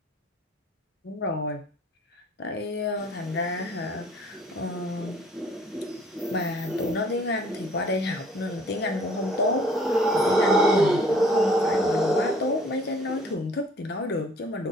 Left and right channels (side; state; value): both; normal; correlation 0.55